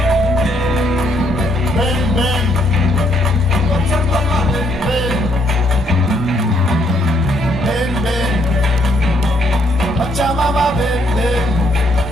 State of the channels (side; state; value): both; normal; correlation 0.71